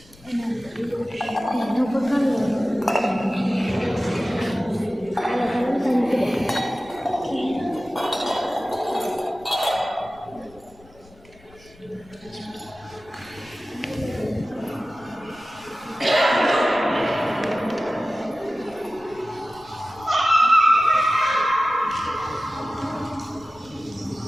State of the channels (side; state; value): left; noise; rumble, 25 dB below the sound